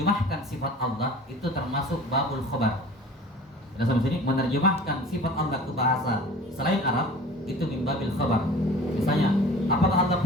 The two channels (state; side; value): normal; both; correlation 0.43